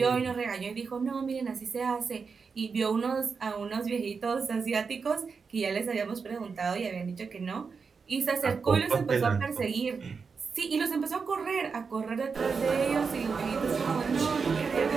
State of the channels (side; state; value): left; quieter; 5.3 dB